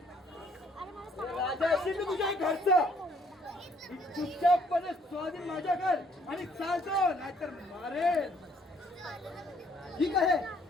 राजा असेल तर तुझ्या घरचं चुपचापपणे स्वाधीन माझ्या कर आणि चालतो, नाहीतर मारेल. ठीक आहे.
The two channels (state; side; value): normal; both; correlation 0.64